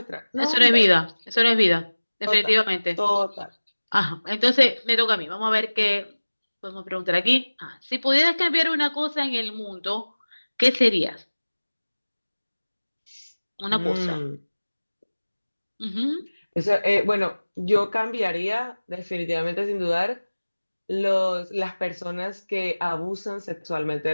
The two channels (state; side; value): inverted; both; correlation -1.00